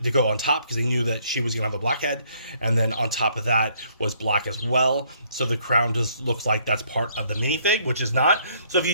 to go on top, because they knew that she was gonna have a black head, and then on top of that was black as well. So the crown just looks like that's part of the minifig, which is not. So if you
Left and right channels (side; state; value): both; inverted; correlation -0.66